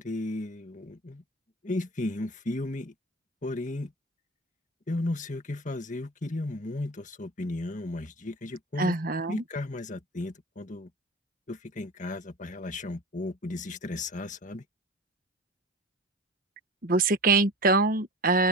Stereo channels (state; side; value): normal; both; correlation 0.34